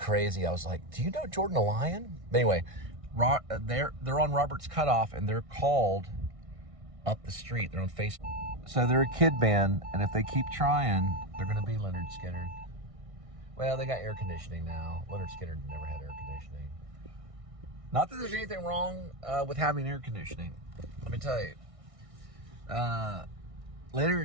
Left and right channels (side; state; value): left; late; 1.6 ms